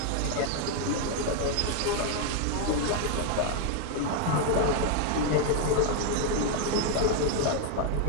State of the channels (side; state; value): both; different; correlation 0.00